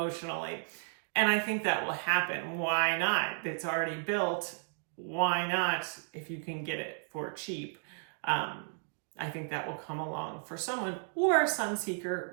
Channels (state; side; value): silent; left; 55 dB below the other